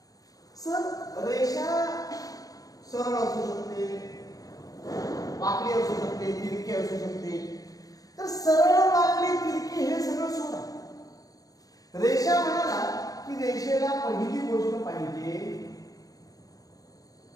सर रेषा सरळ असू शकते, वाकडी असू शकते, तिरकी असू शकते. तर सरळ, वाकडी, तिरकी हे सगळं सोडा. रेषा म्हणाला की रेषेला पहिली गोष्ट पाहिजे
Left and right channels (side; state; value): right; late; 0.17 ms